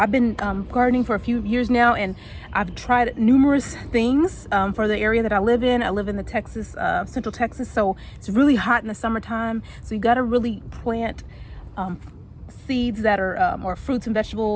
been gardening for a few years now, and I've tried numerous things for the area that I live in. I live in the Central Texas, so it's really hot in the summertime. So you got to really plant seeds that are or fruits and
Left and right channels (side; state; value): both; identical; correlation 1.00